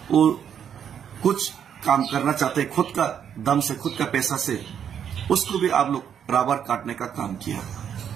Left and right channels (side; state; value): left; quieter; 8.5 dB